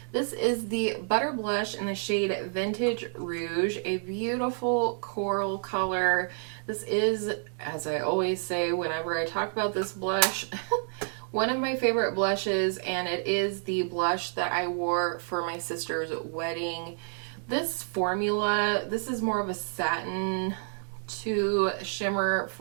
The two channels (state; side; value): silent; left; 58 dB below the other